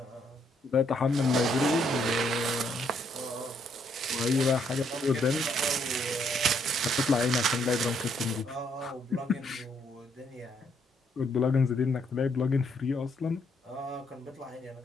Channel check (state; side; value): normal; both; correlation 0.71